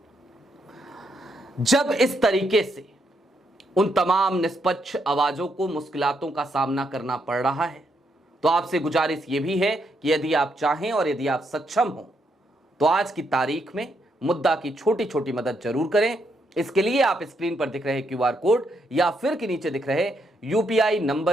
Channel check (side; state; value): both; normal; correlation 0.77